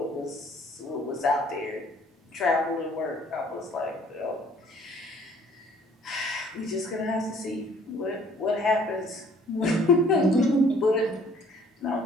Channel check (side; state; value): both; normal; correlation 0.58